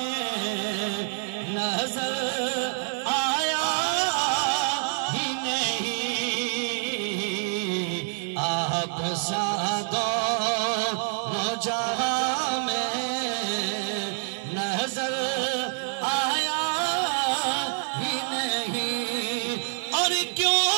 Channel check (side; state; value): left; silent; digital silence